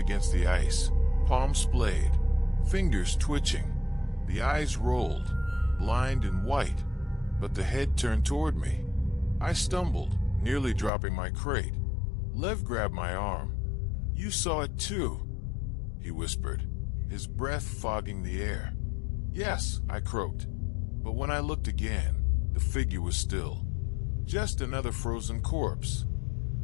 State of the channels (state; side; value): drops out; right; at 10.9 s